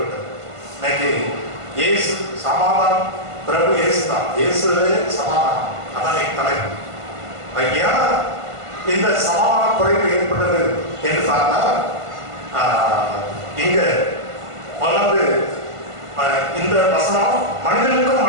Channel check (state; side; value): late; left; 1.5 ms